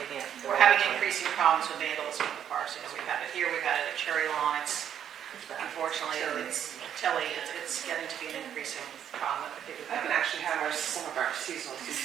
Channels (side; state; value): left; quieter; 9.4 dB